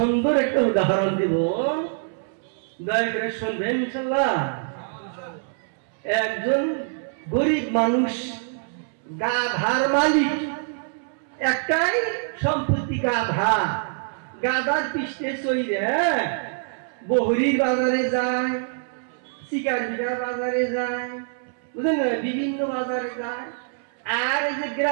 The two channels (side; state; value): left; silent; 62 dB below the other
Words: একটা উদাহরণ দিব, দয়া করে শুনবেন ইনশাআল্লাহ। একজন গরিব মানুষ, গাধার মালিক, একটাই সম্পত্তি গাধা। গাধার পৃষ্ঠে চইরে বহরির বাজারে যায়, শিকারবিঘা বাজারে যায়, বুঝলেন না, বিভিন্ন বাজারে যায়। আর এই যে